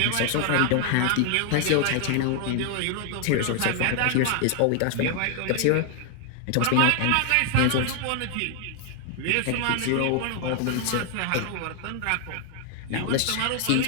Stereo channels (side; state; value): both; different; correlation 0.00